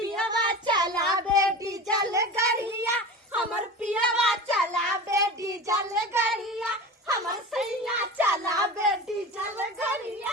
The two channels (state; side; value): normal; both; correlation 0.31